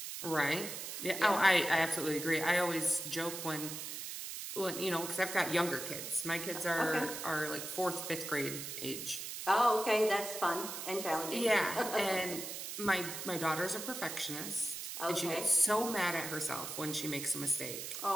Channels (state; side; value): noise; right; hiss, 7 dB below the sound